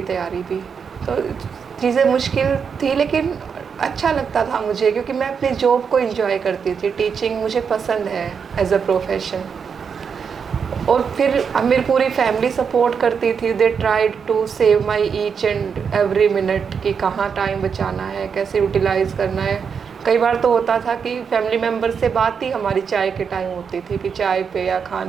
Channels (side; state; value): left; quieter; 6.4 dB